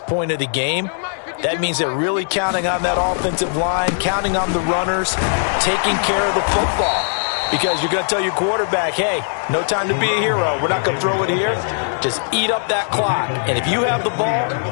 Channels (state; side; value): silent; right; 66 dB below the other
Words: of the game. That means they're really counting on that offensive line, counting on the runners, taking care of the football. Because you're going to tell your quarterback, hey, no time to be a hero. We're not going to throw it here. Just eat up that clock. And if you have the ball,